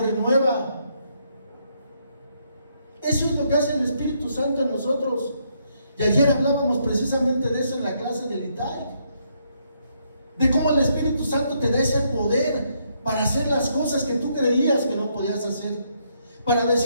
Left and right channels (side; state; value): both; inverted; correlation -0.74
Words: renueva. Eso es lo que hace el Espíritu Santo en nosotros. Y ayer hablábamos precisamente de eso en la clase del ITAI, de cómo el Espíritu Santo te da ese poder para hacer las cosas que tú creías que no podías hacer, para